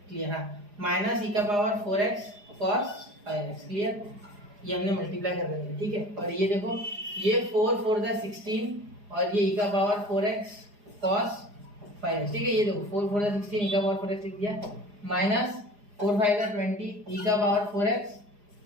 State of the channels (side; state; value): left; late; 4.9 ms